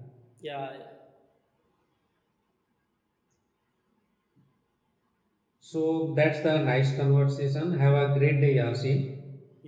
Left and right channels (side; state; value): both; identical; correlation 1.00